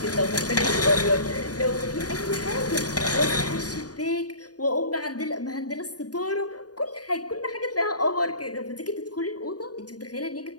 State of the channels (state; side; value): late; right; 0.68 ms